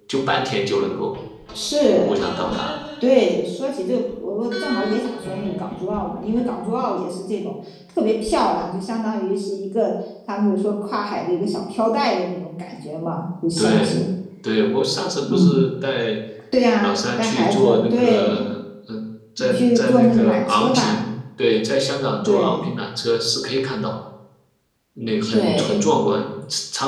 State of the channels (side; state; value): both; identical; correlation 1.00